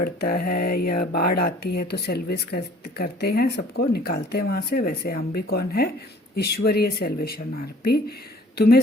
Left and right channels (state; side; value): normal; both; correlation 0.53